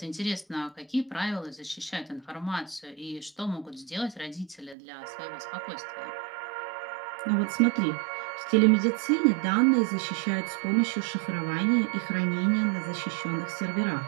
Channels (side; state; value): left; drops out; at 4.8 s